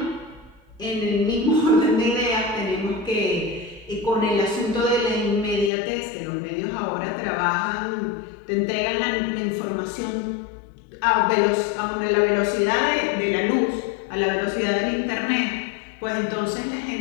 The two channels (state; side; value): drops out; right; at 5.7 s